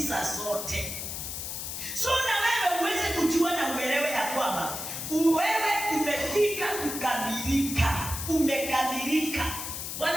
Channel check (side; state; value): left; noise; hiss, 6 dB below the sound